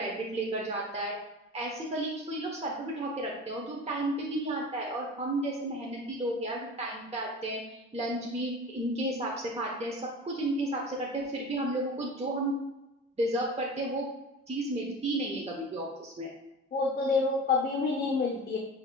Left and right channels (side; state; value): both; normal; correlation 0.34